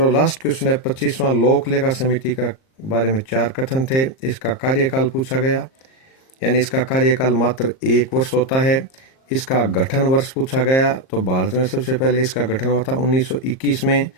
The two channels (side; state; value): right; late; 38 ms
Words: लास्ट क्वेश्चन है 25वां लोक लेखा समिति का बारे में 4 कथन थे। इसका कार्यकाल पूछा गया, यानी इसका कार्यकाल मात्र 1 वर्ष होता है। इसका गठन वर्ष पूछा गया, तो भारत में सबसे पहले इसका गठन हुआ था 1921 में।